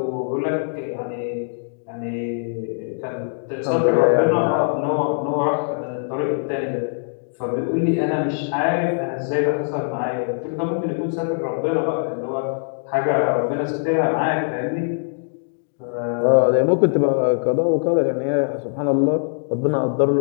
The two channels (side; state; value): right; silent; digital silence